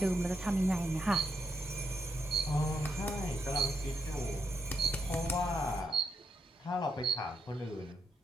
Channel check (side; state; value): both; normal; correlation 0.80